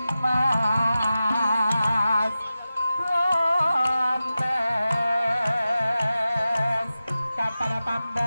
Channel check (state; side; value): inverted; both; correlation -0.94